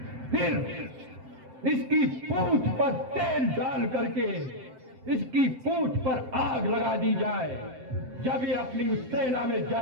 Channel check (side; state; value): left; late; 7.8 ms